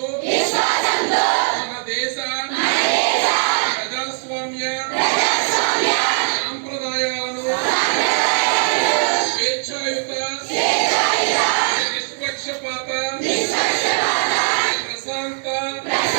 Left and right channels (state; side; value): silent; left; digital silence